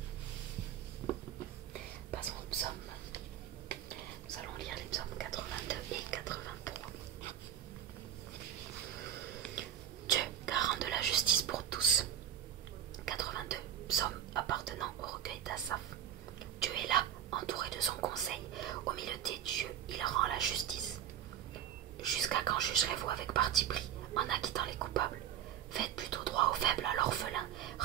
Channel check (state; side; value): quieter; left; 10.3 dB